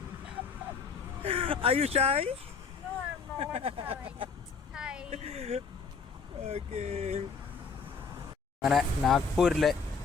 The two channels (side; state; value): right; quieter; 5.3 dB